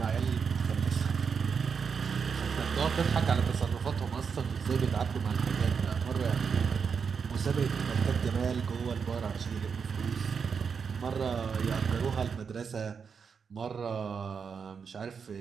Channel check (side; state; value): left; quieter; 6.2 dB